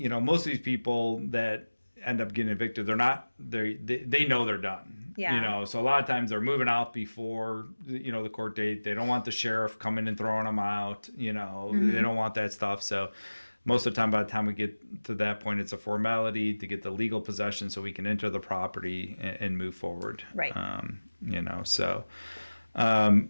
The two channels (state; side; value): inverted; both; correlation -1.00